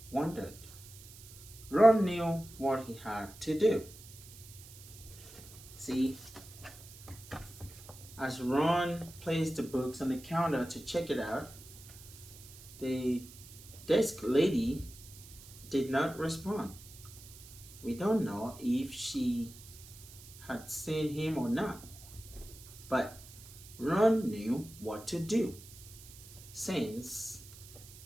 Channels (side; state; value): right; noise; hiss, 18 dB below the sound